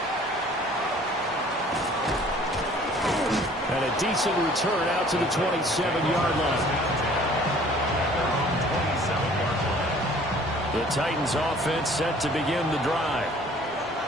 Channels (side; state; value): both; normal; correlation 0.53